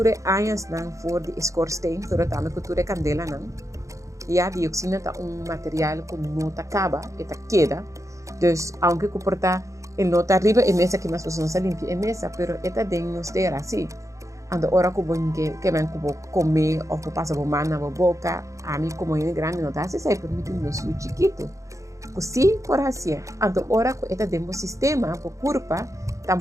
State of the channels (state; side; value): late; left; 0.15 ms